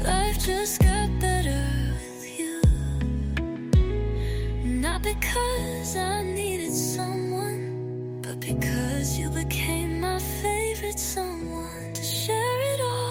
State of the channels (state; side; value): identical; both; correlation 1.00